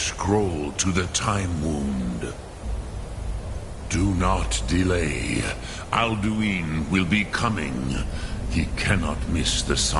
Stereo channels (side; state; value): both; identical; correlation 1.00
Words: to the Time Wound. Do not delay. Alduin will be coming. He cannot miss the